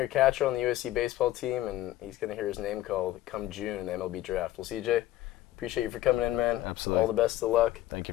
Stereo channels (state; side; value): quieter; right; 14.7 dB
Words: catcher on the USC baseball team, and he's going to hear his name called come June in the MLB draft. Well, CJ, appreciate you for coming in, man. Absolutely. All the best of luck. Thank